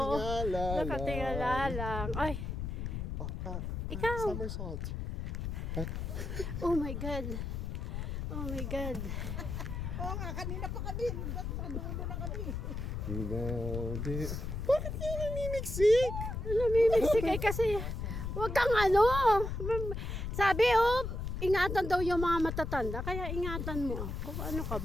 lang. Nakatingala lang. Ay, ikaw. Somersault. Oh my God. Oh my God. Oo nga, kanina pa kami. Dulo na kami. Bakit kayo namimiksik? Namimiksik kasi wag kang sabi ingatan daw yung mga matatanda, kaya ingatan mo ako. Ano ka,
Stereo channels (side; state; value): left; noise; rumble, 4 dB below the sound